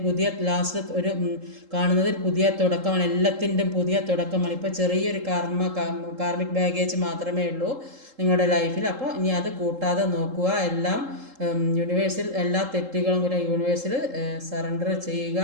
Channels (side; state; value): left; late; 3.7 ms